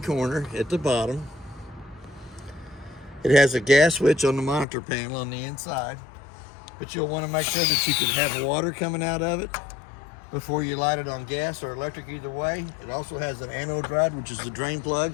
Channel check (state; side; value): drops out; right; at 4.7 s